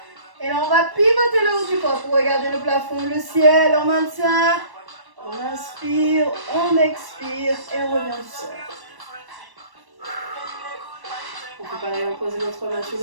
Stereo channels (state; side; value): late; left; 1.1 ms